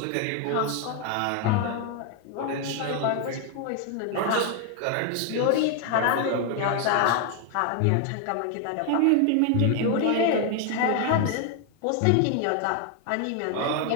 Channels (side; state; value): both; different; correlation 0.01